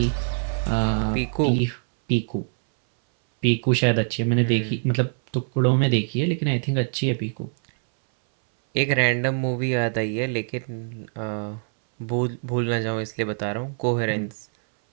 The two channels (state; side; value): silent; left; 63 dB below the other